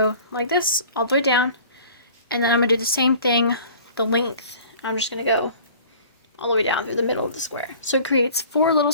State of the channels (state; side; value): inverted; both; correlation -0.47